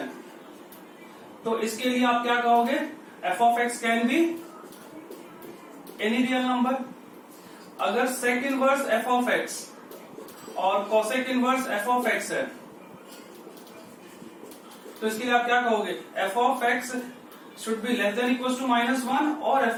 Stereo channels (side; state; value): both; identical; correlation 1.00